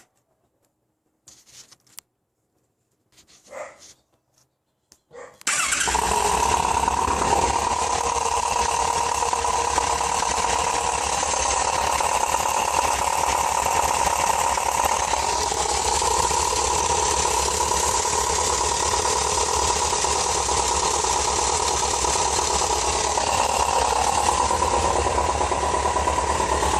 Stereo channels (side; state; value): both; identical; correlation 1.00